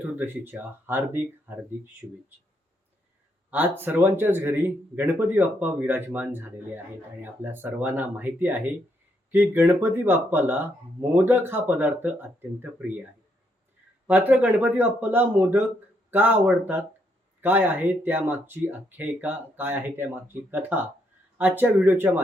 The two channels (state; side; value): normal; both; correlation 0.76